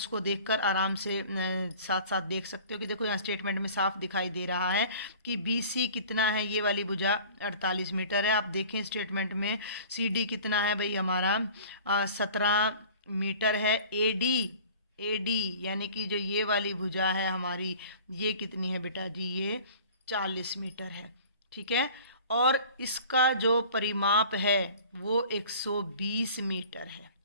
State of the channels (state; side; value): inverted; both; correlation -0.44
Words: देखकर आराम से साथ साथ देख सकते हो कि देखो यहाँ स्टेटमेंट में साफ दिखाई दे रहा है कि BC कितना है, ये वाली भुजा 48 मीटर है। आप देखें स्टेटमेंट में CD कितना है भाई हमारा 17 मीटर है। AD यानी कि जो ये वाली भुजा है हमारी, ये कितनी है बेटा जी, ये 40 मीटर है, ठीक है। और इसका जो परिमाप है वो 120 मीटर है।